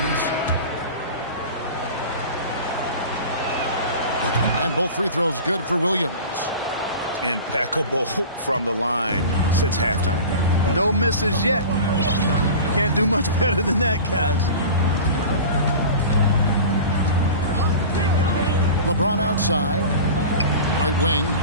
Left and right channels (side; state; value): both; inverted; correlation -0.35